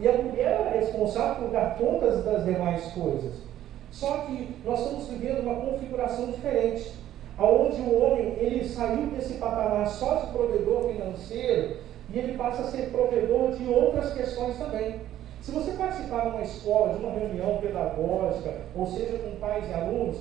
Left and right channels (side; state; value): left; quieter; 12.4 dB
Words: a mulher era responsável por dar contas das demais coisas. Só que nós estamos vivendo uma configuração diferente, onde o homem ele saiu desse patamar só de provedor financeiro e ele passa a ser provedor de outras questões também. Se você participar de uma escola, de uma reunião pedagógica, ou seja, com pais e alunos,